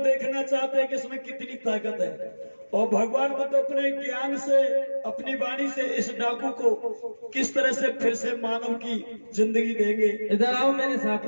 चाहते हैं कि इसमें कितनी ताकत है, और भगवान बुद्ध अपने ज्ञान से, अपनी वाणी से इस डाकू को किस तरह से फिर से मानव की जिंदगी देंगे। इधर आओ मेरे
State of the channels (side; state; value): both; inverted; correlation -1.00